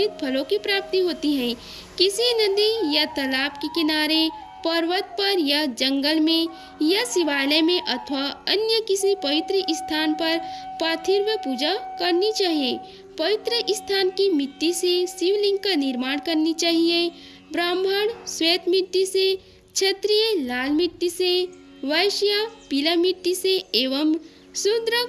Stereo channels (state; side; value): identical; both; correlation 1.00